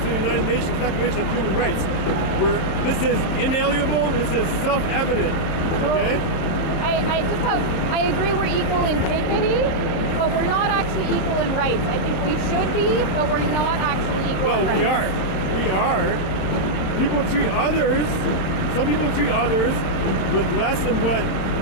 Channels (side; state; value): right; late; 27 ms